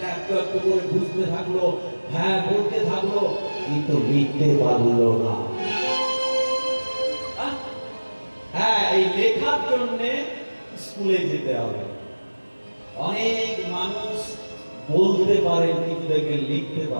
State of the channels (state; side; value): inverted; both; correlation -1.00